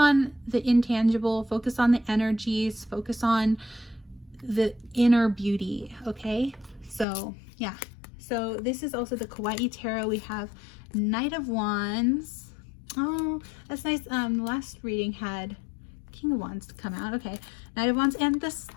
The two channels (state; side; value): drops out; right; at 7.1 s